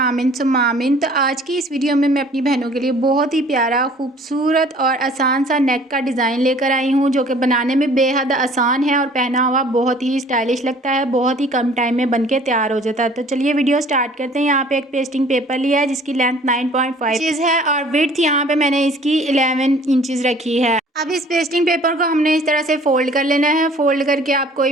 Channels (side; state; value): both; normal; correlation 0.52